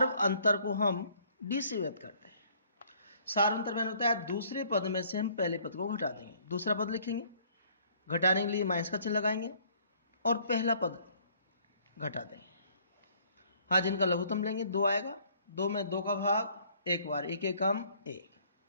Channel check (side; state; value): both; inverted; correlation -0.60